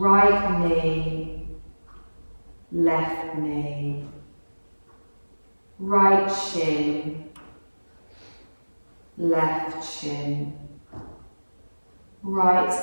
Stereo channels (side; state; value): both; inverted; correlation -1.00